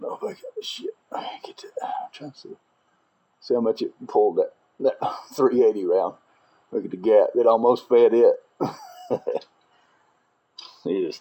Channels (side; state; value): both; identical; correlation 1.00